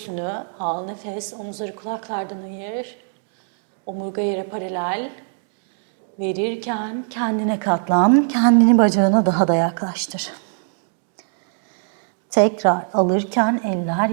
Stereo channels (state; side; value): silent; left; digital silence